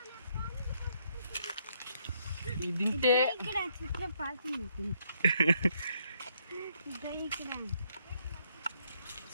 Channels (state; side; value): inverted; both; correlation -0.72